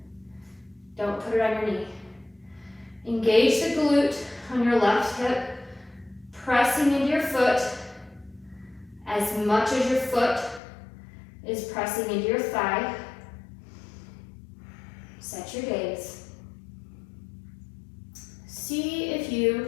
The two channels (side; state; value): right; drops out; at 10.6 s